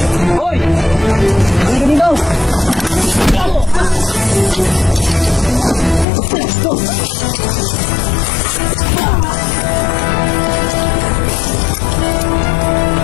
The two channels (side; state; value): right; drops out; at 6.1 s